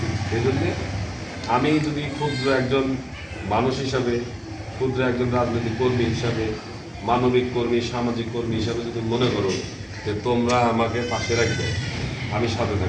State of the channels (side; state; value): both; identical; correlation 1.00